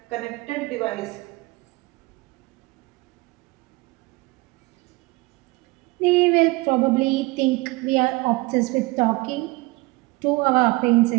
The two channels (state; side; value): quieter; left; 23.3 dB